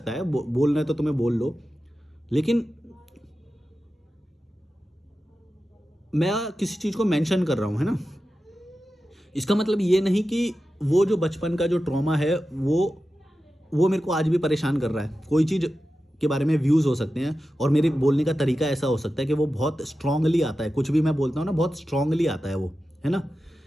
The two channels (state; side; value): normal; both; correlation 0.93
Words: है, बोलना है तो तुम्हें बोल लो, लेकिन मैं किसी चीज़ को मेंशन कर रहा हूँ, है ना। इसका मतलब ये नहीं कि वो जो बचपन का जो ट्रॉमा है वो मेरे को आज भी परेशान कर रहा है। कोई चीज़ के बारे में व्यूज़ हो सकते हैं और मेरे बोलने का तरीका ऐसा हो सकता है कि वो बहुत स्ट्रांगली आता है। कुछ भी मैं बोलता हूँ ना, बहुत स्ट्रांगली आता है वो, है ना।